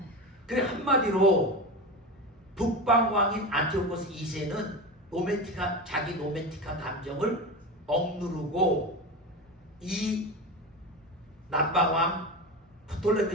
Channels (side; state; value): both; normal; correlation 0.23